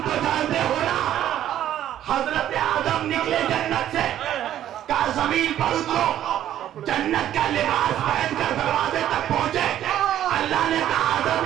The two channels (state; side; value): quieter; left; 11.6 dB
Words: तो जानते हो ना, हजरत आदम निकले जन्नत से, का जमीन पर उतरो, जन्नत का लिबास पहनकर दरवाजे तक पहुंचे। अल्लाह ने कहा आदम